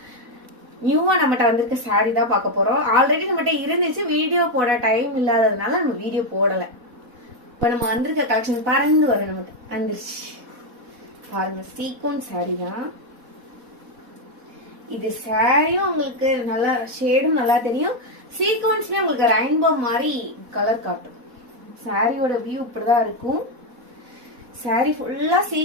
நியூவா நம்மகிட்ட வந்திருக்க saree தான் பார்க்க போறோம். ஆல்ரெடி நம்மகிட்ட இருந்துச்சு, வீடியோ போட டைம் இல்லாததுனால நம்ம வீடியோ போடல. இப்ப நம்ம வந்திருக்க கலெக்ஷன் பறந்து வரும், நமக்கு வந்துருச்சு பாருங்க. சீக்வன்ஸ் saree தான் இது. சாரியும் உங்களுக்கு நல்லா ஷேடும் நல்லா தெரியும், சீக்வன்ஸ்லயே உங்களுக்கு ரெயின்போ மாதிரி கலர் காட்டும். சாரியோட வியூ இப்படிதான் இருக்கும். சாரி ஃபுல்லா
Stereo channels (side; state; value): left; late; 4.1 ms